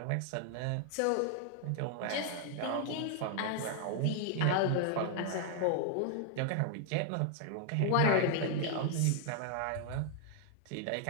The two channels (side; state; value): both; different; correlation 0.00